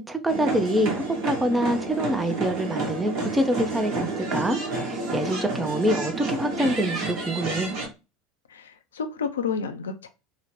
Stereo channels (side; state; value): both; normal; correlation 0.57